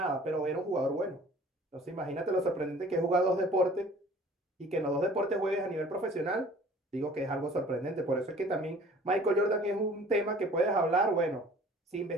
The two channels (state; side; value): normal; both; correlation 0.50